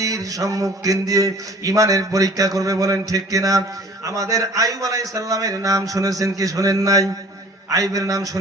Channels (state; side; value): normal; both; correlation 0.49